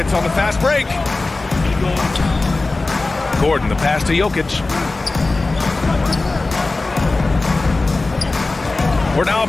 on the fast break. Gordon, the pass to Jokic. We're now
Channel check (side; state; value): right; quieter; 3.4 dB